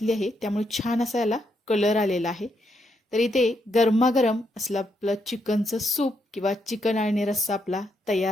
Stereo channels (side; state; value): both; normal; correlation 0.78